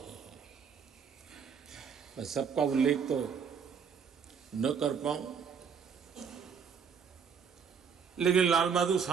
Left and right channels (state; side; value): quieter; left; 6.7 dB